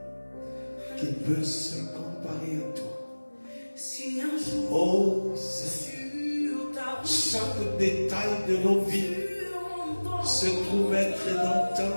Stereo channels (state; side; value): inverted; both; correlation -1.00